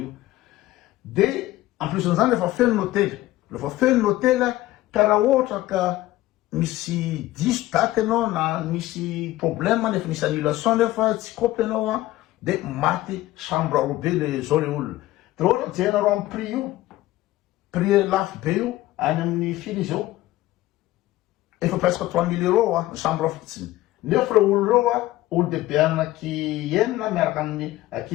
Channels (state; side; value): quieter; right; 16.4 dB